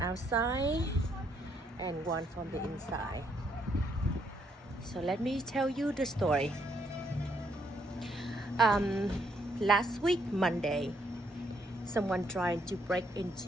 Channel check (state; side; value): normal; both; correlation 0.72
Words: and one from the inside. So let me tell you the story. Last week Monday, someone trying to break